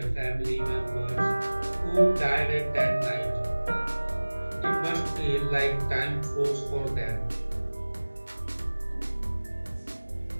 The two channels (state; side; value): inverted; both; correlation -1.00